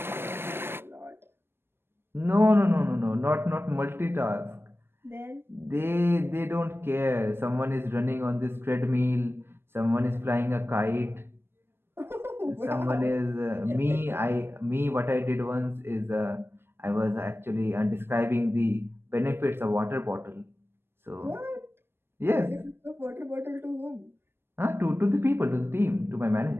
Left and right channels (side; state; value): left; late; 0.11 ms